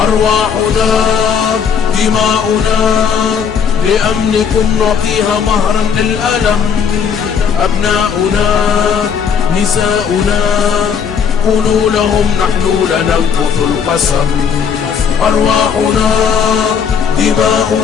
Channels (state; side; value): quieter; right; 6.9 dB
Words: دماؤنا لأمنكم نعطيها مهرا للألم. أبناؤنا نساؤنا قولوا لهم نحن لننقض القسم. أرواحنا